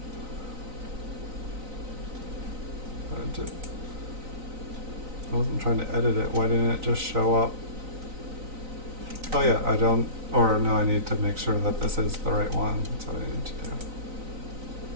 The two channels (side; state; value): left; late; 3.9 ms